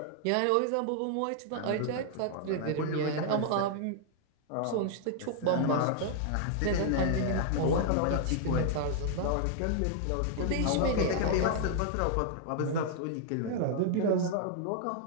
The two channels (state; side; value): different; both; correlation 0.00